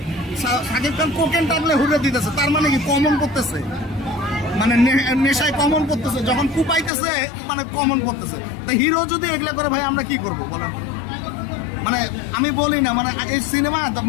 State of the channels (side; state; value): right; drops out; at 6.9 s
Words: সাকিব খান কোকেন টানলে হুররে দিতেছে, তার মানে কি কমন করতেছে, মানে নেশায় কমন করতেছে, যখন কুপাইতেছে মানে কমন করতেছে। তো হিরো যদি এগুলা করে ভাই আমরা কি করবো বলেন? মানে আমি বলি না, মানে এই সিনেমা